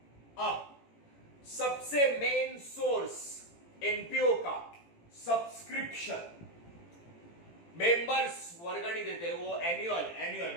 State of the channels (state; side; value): late; right; 18 ms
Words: अब सबसे मेन सोर्स एनपीओ का सब्सक्रिप्शन, मेंबर्स वर्गणी देते हैं वो एनुअल